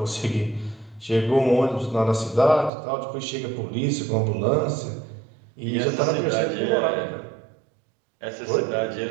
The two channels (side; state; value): left; drops out; at 2.7 s